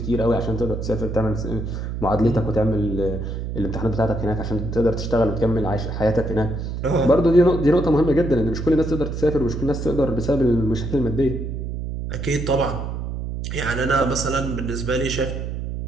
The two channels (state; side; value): noise; right; hum, 5 dB below the sound